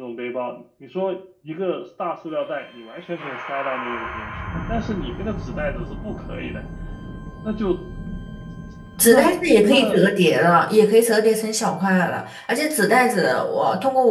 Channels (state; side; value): identical; both; correlation 1.00